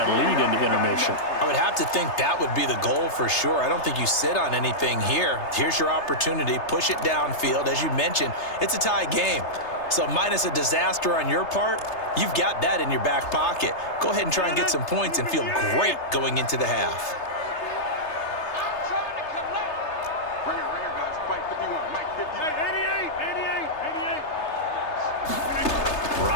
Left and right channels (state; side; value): late; right; 3.3 ms